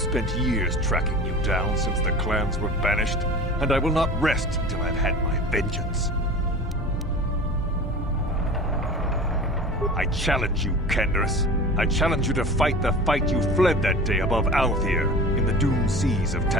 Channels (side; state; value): both; normal; correlation 0.37